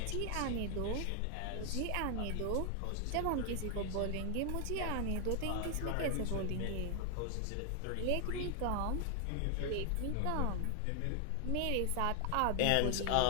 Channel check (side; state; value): both; different; correlation 0.00